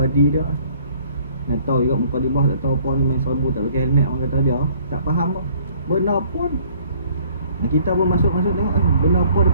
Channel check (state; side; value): inverted; both; correlation -0.58